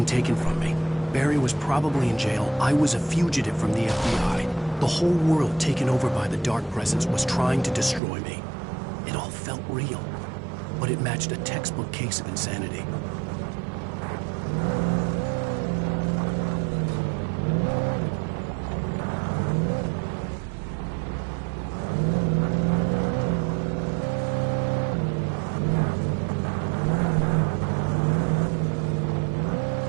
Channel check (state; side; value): drops out; left; at 8.0 s